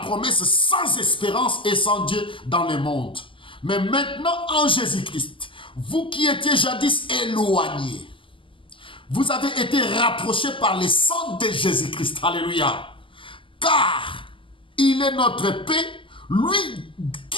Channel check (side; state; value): right; late; 0.25 ms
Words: sans espérance et sans Dieu dans le monde. Mais maintenant en Jésus-Christ, vous qui étiez jadis éloignés, vous avez été rapprochés par le sang de Jésus-Christ. Alléluia. Car il est notre paix. Lui